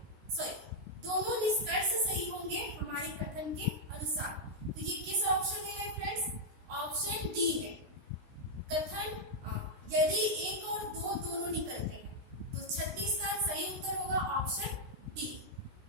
दोनों निष्कर्ष सही होंगे हमारे कथन के अनुसार। तो ये किस ऑप्शन में है फ्रेंड्स? ऑप्शन डी में। कथन यदि 1 और 2 दोनों निकलते हैं तो 36 का सही उत्तर होगा ऑप्शन डी।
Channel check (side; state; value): left; late; 16 ms